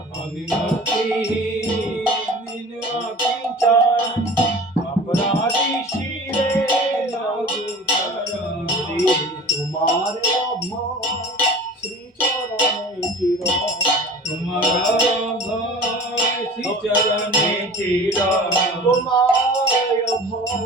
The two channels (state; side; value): normal; both; correlation 0.41